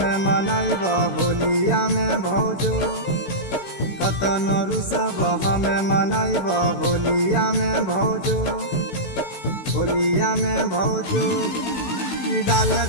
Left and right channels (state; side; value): late; right; 16 ms